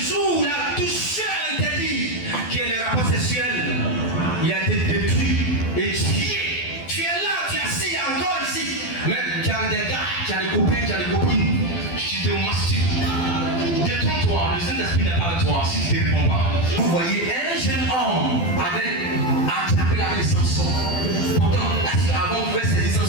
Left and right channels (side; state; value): right; late; 12 ms